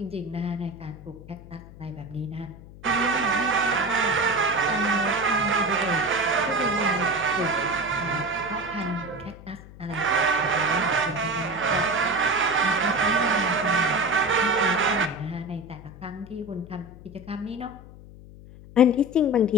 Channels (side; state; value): left; noise; hum, 18 dB below the sound